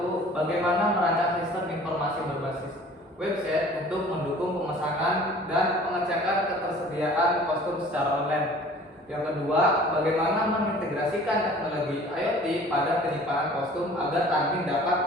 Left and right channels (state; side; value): normal; both; correlation 0.48